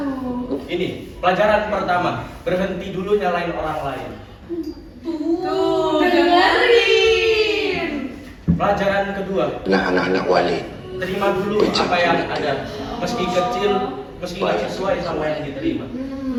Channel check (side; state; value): both; identical; correlation 1.00